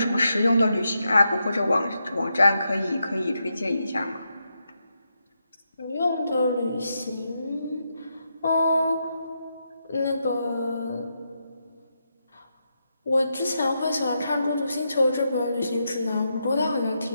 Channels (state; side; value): inverted; both; correlation -0.84